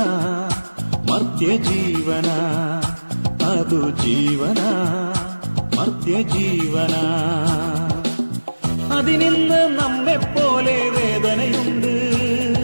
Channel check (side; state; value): both; inverted; correlation -1.00